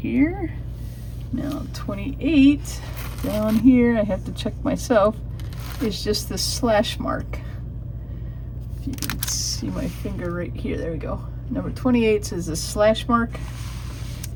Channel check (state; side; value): identical; both; correlation 1.00